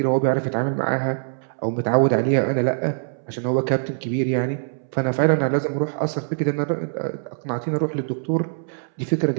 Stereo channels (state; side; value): silent; left; 63 dB below the other